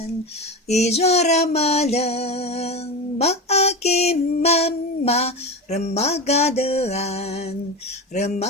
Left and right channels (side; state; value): both; normal; correlation 0.23